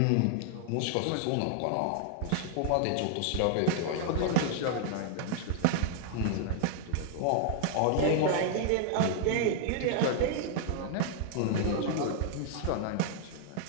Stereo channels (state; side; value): different; both; correlation 0.00